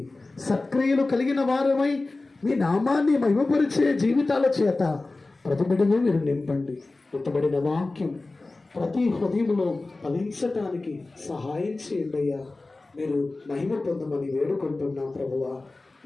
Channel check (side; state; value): right; quieter; 3.3 dB